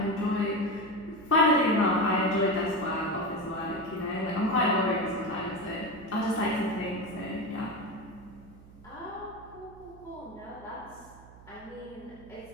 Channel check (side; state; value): right; noise; hum, 21 dB below the sound